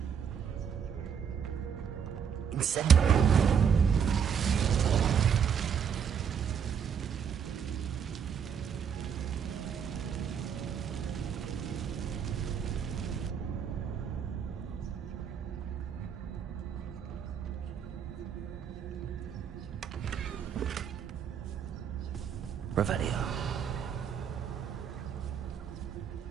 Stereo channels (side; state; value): left; quieter; 7.5 dB